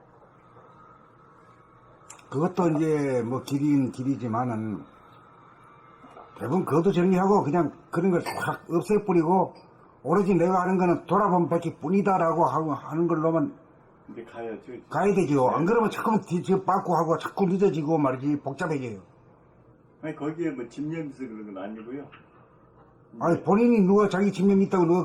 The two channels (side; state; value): both; identical; correlation 1.00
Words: 그것도 이제 뭐 길이지만은 대부분 그것도 정리하고 그냥 그런 걸 확 없애버리고 오로지 내가 하는 거는 돌아보면 밖에 뿐이다라고 하는 걸로만 근데 가야죠. 가야 되죠. 안 그러면 자꾸 뒤집어 빠꾸 하고 자꾸 늦어지고 말이지 복잡해져요. 아니 거기에 뭐 집념에서 그런 건 아니고요. 아니 본인이 누가 자기 집념이 있다고 누가